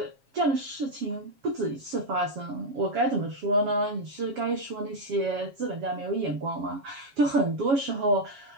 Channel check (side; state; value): left; late; 7.3 ms